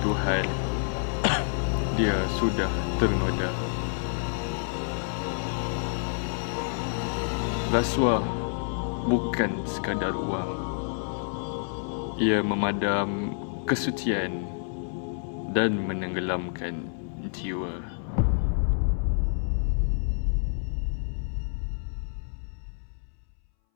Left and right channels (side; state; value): right; silent; 59 dB below the other